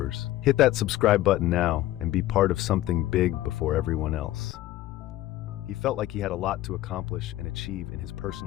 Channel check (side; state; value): right; quieter; 14.9 dB